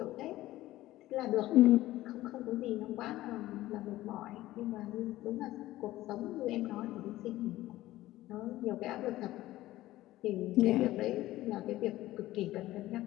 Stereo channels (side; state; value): right; quieter; 16.0 dB